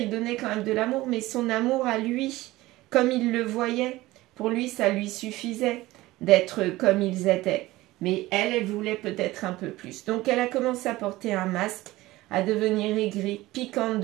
donnait quand même de l'amour, mais son amour à lui, comme il le voyait, pour lui, ça lui suffisait d'être comme ils étaient. Mais elle, elle voulait peut-être un peu plus. Donc elle a commencé à porter un masque, à devenir aigrie, piquante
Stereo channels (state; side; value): quieter; left; 18.3 dB